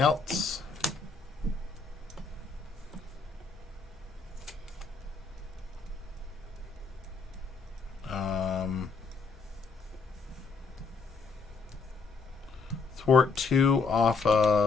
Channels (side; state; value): right; quieter; 4.6 dB